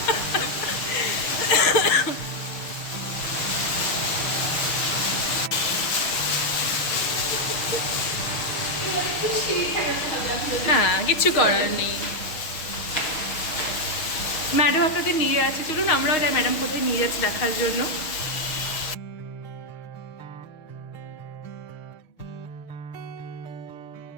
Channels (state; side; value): late; right; 6.5 ms